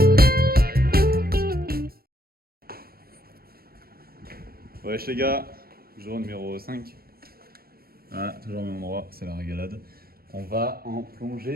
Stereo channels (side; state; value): left; late; 0.44 ms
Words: wesh les gars, jour numéro 5. Voilà, toujours au même endroit, c'est la régalade. On va en